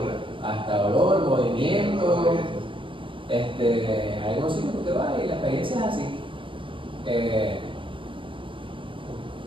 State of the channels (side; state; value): left; late; 0.25 ms